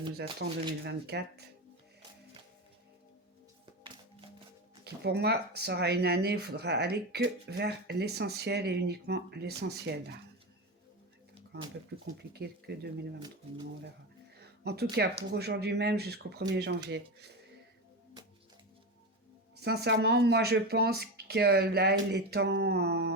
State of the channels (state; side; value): normal; both; correlation 0.19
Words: nous attend 2024. Qui pour moi sera une année où il faudra aller que vers l'essentiel et uniquement l'essentiel. Encore un peu plus compliqué que 2023, mais on verra. En tout cas, pour aujourd'hui même jusqu'au 1er janvier. Sincèrement, moi je pense que là, il est